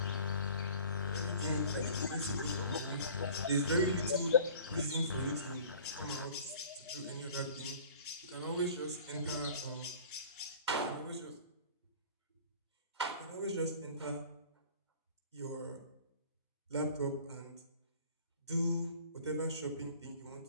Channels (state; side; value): inverted; both; correlation -0.47